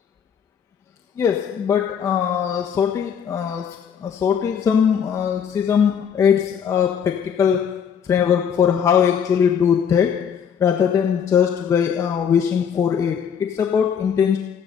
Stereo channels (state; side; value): quieter; right; 7.6 dB